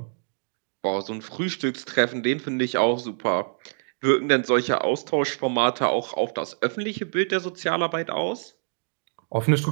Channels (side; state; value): left; silent; digital silence